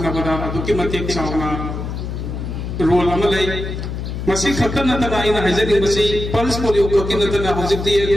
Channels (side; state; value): left; noise; hum, 5 dB below the sound